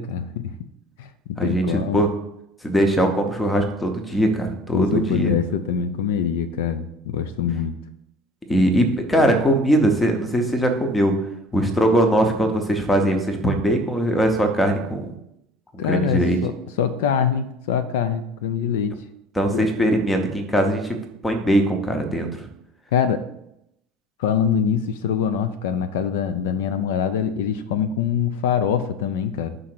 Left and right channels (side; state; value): both; normal; correlation 0.43